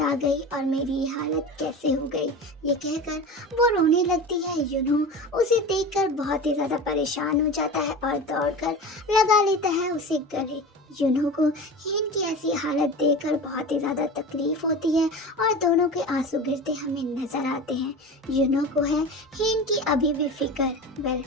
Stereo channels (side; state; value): both; normal; correlation 0.31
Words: आ गई और मेरी ये हालत कैसे हो गई। ये कहकर वो रोने लगती है। यूनहो उसे देखकर बहुत ही ज़्यादा परेशान हो जाता है और दौड़कर लगा लेता है उसे गले। यूनहो को हेन की ऐसी हालत देखकर बहुत ही ज़्यादा तकलीफ होती है और दोनों के आंसू गिरते हमें नज़र आते हैं। यूनहो को है हेन की अभी भी फिक्र। वेल